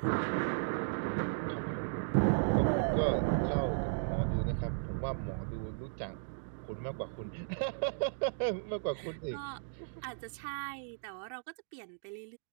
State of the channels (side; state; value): left; silent; digital silence